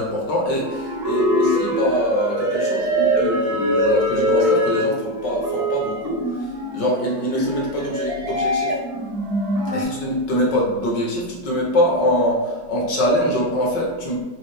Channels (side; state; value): right; late; 5.4 ms